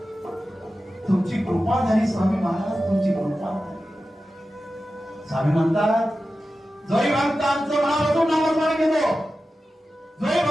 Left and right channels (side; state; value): both; normal; correlation 0.93